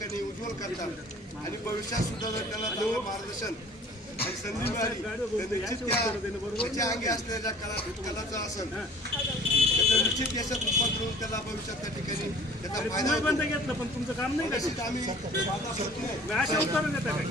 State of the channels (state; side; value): normal; both; correlation 0.49